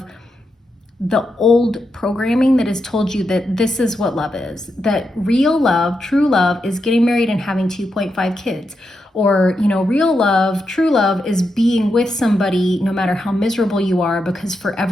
the old programming that has told you that this is what love is, that real love, true love is getting married and having 2.5 kids. Or, real love, true love is being with somebody no matter how miserable you are, because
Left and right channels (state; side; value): normal; both; correlation 0.85